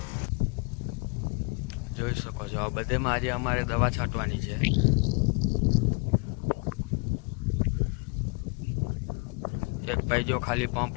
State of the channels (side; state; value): right; quieter; 32.5 dB